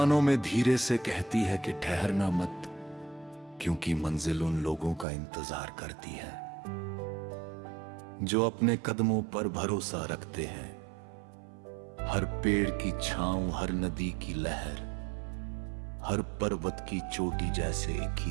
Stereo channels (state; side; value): drops out; left; at 5.1 s